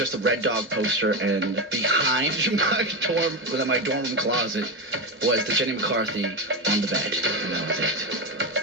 a Red Dog poster, and behind my dorm room closet was the Jenny McCarthy on the bed, and that was it.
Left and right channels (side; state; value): both; normal; correlation 0.14